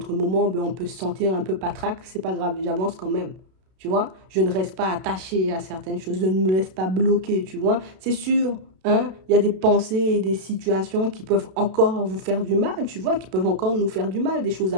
moments, ben, on peut se sentir un peu patraque. C'est pas grave, j'avance quand même. Tu vois, je ne reste pas attaché à certaines choses, je ne me laisse pas bloquer, tu vois. C'est sûr, Hein? Il y a des pensées et des situations qui peuvent encore vous faire du mal, tu vois, qui peuvent encore nous faire du mal, des choses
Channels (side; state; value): left; late; 32 ms